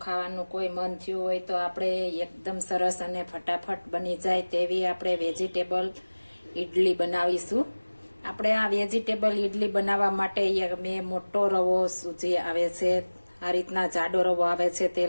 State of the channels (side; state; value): both; inverted; correlation -1.00